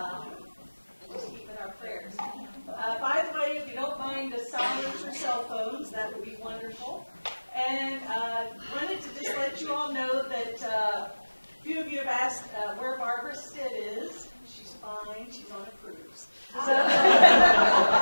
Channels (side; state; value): both; inverted; correlation -1.00